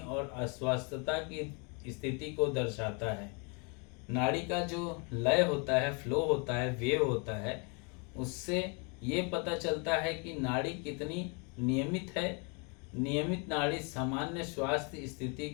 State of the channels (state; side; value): quieter; right; 34.3 dB